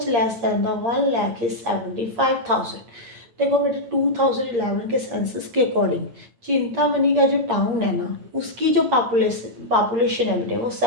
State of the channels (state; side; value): late; left; 8.6 ms